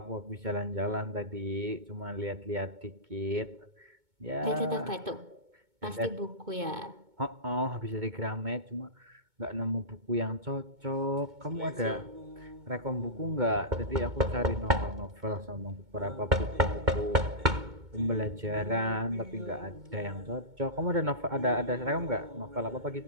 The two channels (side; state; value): left; late; 2.2 ms